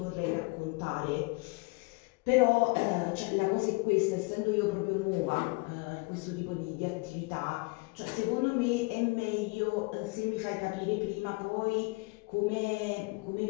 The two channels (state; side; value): quieter; right; 27.2 dB